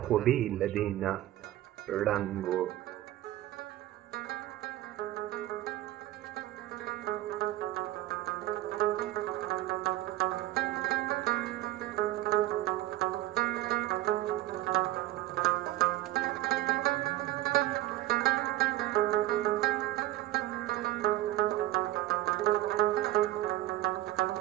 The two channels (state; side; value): quieter; left; 15.2 dB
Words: خو بې له دې نه ړنګ و.